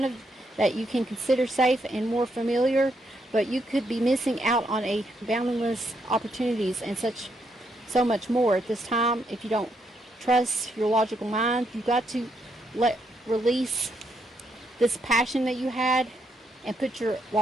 that you can consider safe and more familiar, but you could be missing out on a boundless opportunities and such so much more at this time. If you don't trust your logical mind, you've got to release this passion that you had and put your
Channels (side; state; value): both; normal; correlation 0.77